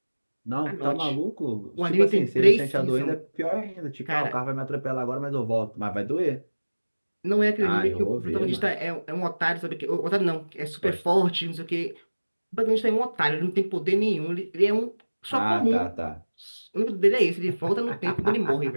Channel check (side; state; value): both; inverted; correlation -1.00